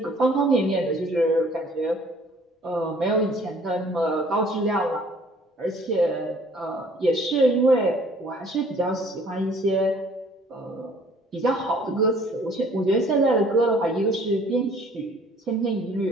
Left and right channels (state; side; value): normal; both; correlation 0.56